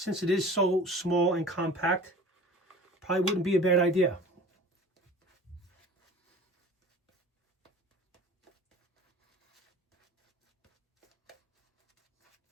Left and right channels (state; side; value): normal; both; correlation 0.42